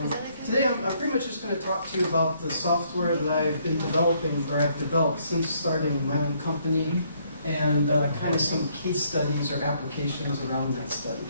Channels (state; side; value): inverted; both; correlation -0.68